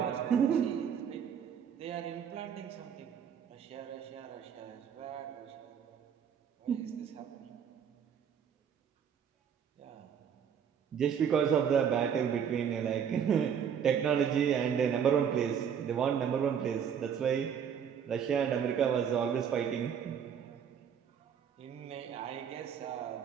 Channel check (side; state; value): left; quieter; 7.9 dB